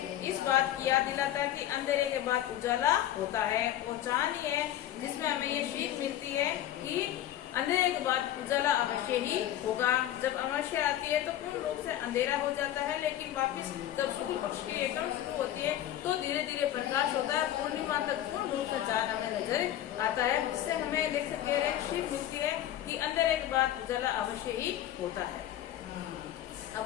इस बात की याद दिलाता है कि अंधेरे के बाद उजाला होता है। वो चांद ही है जिसमें हमें ये सीख मिलती है कि अंधेरे के बाद उजाला अवश्य ही होगा। जब अमावस्या आती है तो पूर्ण रूप से अंधेरा हो जाता है, लेकिन वापस जब शुक्ल पक्ष की एकदम शुरू होती है तो धीरे धीरे प्रकाश होता है। पूर्णिमा तक पूर्ण रूप से चांद हमें नजर आता है, जिससे हमें लेखक कह रहे सीख मिलती है कि अंधेरे के बाद उजाला अवश्य ही होता है।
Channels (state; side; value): quieter; right; 12.3 dB